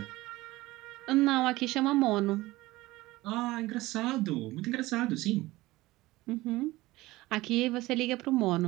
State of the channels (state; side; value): quieter; left; 19.0 dB